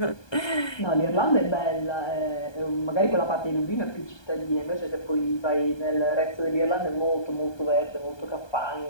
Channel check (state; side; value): late; right; 1.2 ms